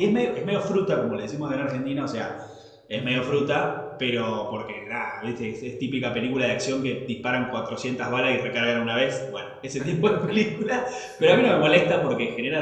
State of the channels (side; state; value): both; identical; correlation 1.00